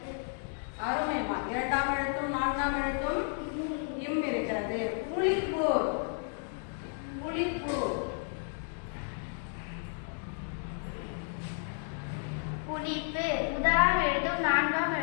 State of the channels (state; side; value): silent; right; 56 dB below the other